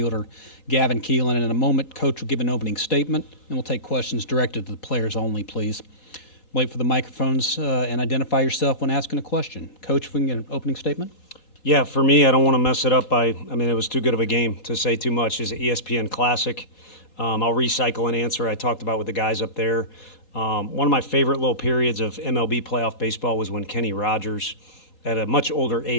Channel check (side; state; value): right; late; 4.1 ms